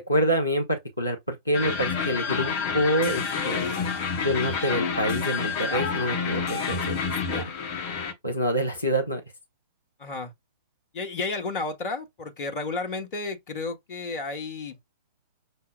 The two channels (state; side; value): inverted; both; correlation -0.32